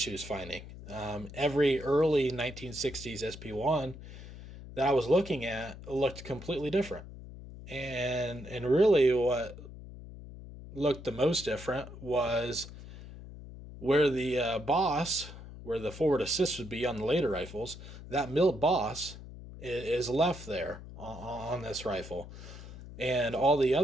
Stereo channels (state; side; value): noise; left; hum, 14 dB below the sound